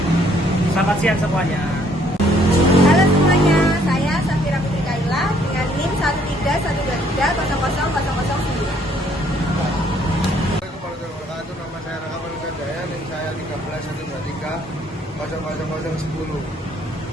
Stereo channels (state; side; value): normal; both; correlation 0.65